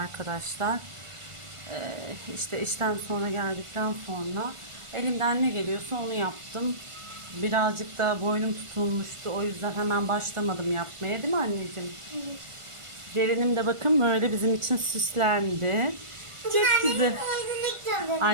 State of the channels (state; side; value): late; left; 1.4 ms